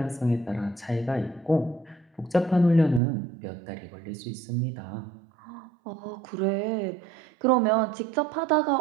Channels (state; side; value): drops out; left; at 3.0 s